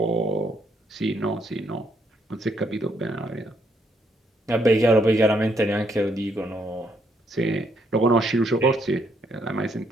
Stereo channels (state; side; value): normal; both; correlation 0.73